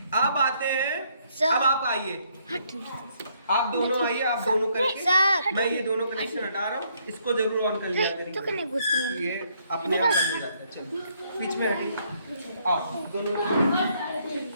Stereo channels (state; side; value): inverted; both; correlation -0.70